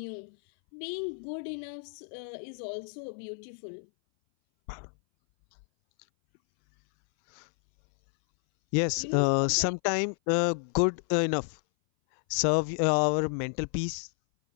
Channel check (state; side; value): silent; right; 58 dB below the other